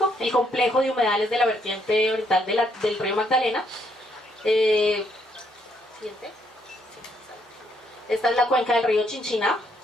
el complejo de humedales de la vertiente oriental del río Magdalena. Siguiente. Esta es la cuenca del río Chinchiná,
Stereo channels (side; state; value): both; normal; correlation 0.72